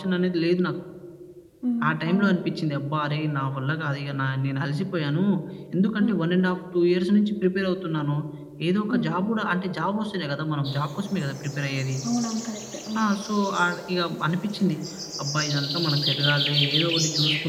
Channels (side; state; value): both; identical; correlation 1.00